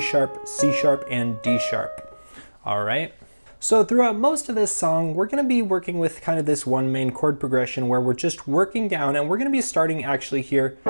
C sharp, and D sharp. All right. So throughout most of this song, we're going to be working with kind of this one main chord progression where we're just working down, and we're going to be starting actually here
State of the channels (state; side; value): inverted; both; correlation -1.00